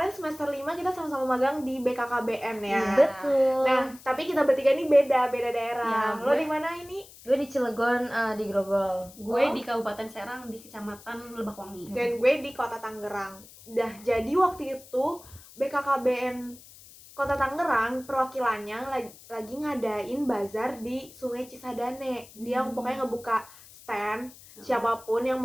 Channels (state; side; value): noise; left; hiss, 21 dB below the sound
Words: semester 5 kita sama-sama magang di BKKBN ya. Betul. Nah, tapi kita bertiga nih beda daerah. Ya, lo di mana ini? Gue di Cilegon, di Grogol. Gue di Kabupaten Serang di Kecamatan Lebakwangi. Dan gue di Kota Tangerang. Jadi waktu itu BKKBN Kota Tangerang perwakilannya lagi ngadain bazar di Sungai Cisadane. Dia pokoknya ngebuka stand. Siapapun yang